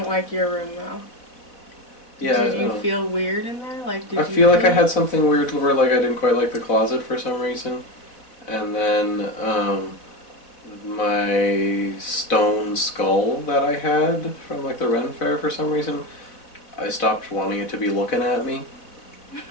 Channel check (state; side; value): late; right; 4.1 ms